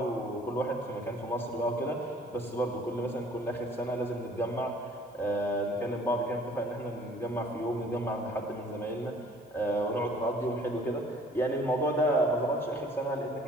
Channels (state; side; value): normal; both; correlation 0.54